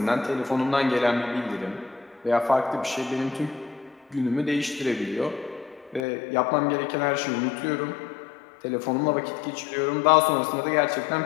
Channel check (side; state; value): right; drops out; at 6.1 s